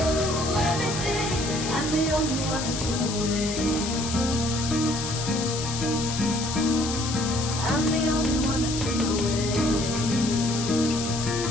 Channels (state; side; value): noise; left; hiss, 5 dB below the sound